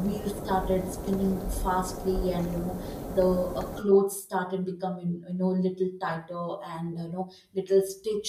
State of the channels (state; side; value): identical; both; correlation 1.00